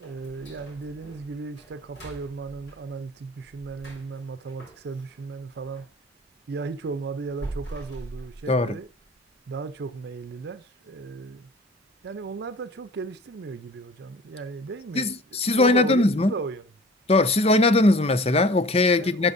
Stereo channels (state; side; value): normal; both; correlation 0.45